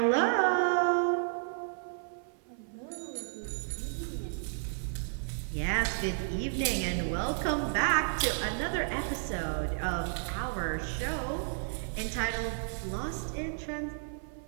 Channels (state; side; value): silent; left; 56 dB below the other